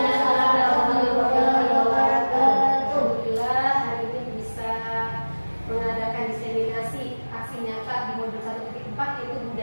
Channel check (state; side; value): inverted; both; correlation -1.00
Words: warahmatullahi wabarakatuh. Alhamdulillah hari ini bisa mengadakan diseminasi aksi nyata di modul 1.4 yaitu